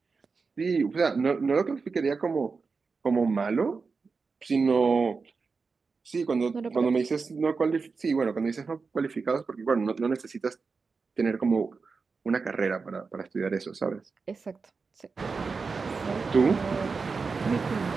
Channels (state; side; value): quieter; left; 4.7 dB